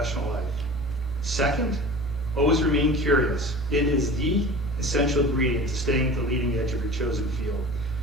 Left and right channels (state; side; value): normal; both; correlation 0.38